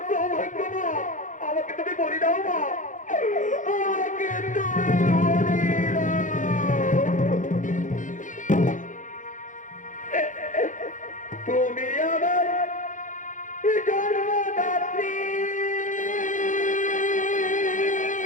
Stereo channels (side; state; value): right; late; 0.37 ms